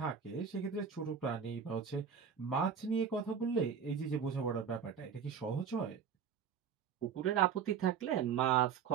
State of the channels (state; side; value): quieter; left; 7.0 dB